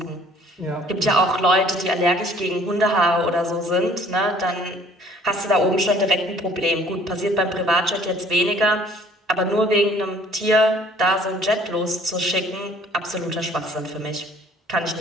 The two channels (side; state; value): both; normal; correlation 0.55